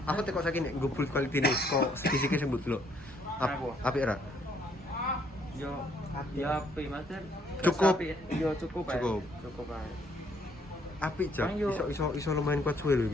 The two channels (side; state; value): both; normal; correlation 0.67